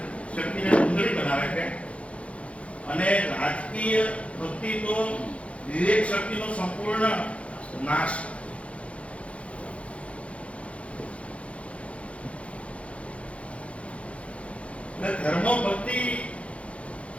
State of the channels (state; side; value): late; right; 0.062 ms